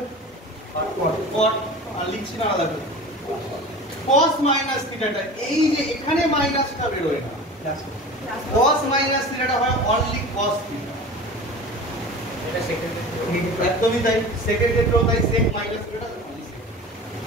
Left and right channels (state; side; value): normal; both; correlation 0.36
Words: cot, আর লিখছি না আলাদা করে। cos মাইনাস থিটাটা এই যে এখানে মাইনাসটা বের হয় না, cos মাইনাস থিটাটা হয় অনলি cos থিটা। এটা সেকেন্ড একদমই তাই, সেকেন্ড ক্ষেত্রেও তাই, sec মাইনাস থিটা